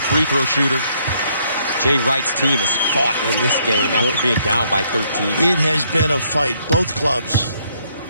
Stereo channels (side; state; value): both; inverted; correlation -0.69